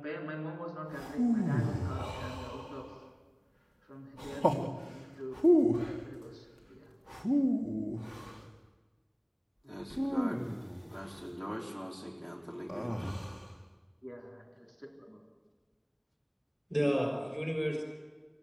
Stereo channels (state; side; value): identical; both; correlation 1.00